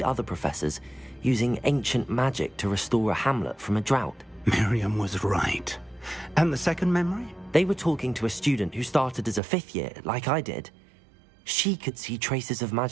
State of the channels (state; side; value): drops out; left; at 9.4 s